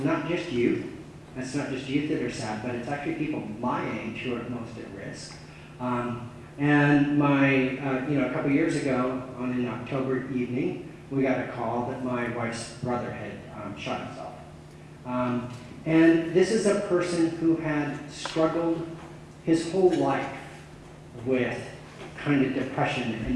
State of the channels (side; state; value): both; identical; correlation 1.00